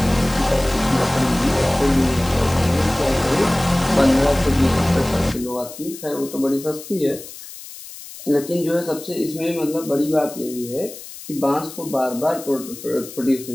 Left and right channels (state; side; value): noise; left; hiss, 15 dB below the sound